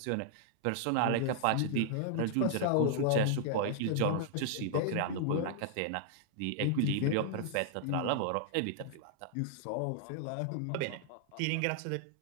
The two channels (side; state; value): both; different; correlation -0.01